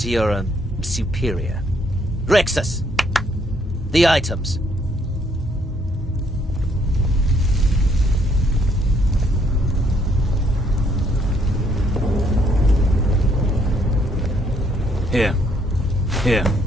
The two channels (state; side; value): normal; both; correlation 0.69